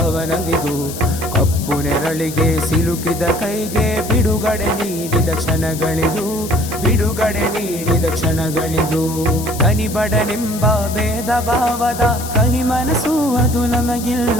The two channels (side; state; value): left; noise; hiss, 11 dB below the sound